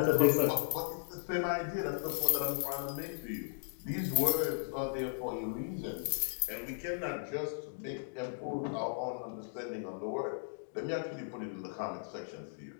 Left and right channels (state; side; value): silent; right; digital silence